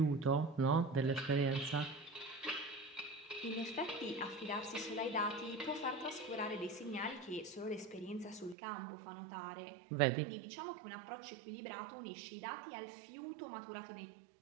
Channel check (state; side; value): drops out; left; at 8.6 s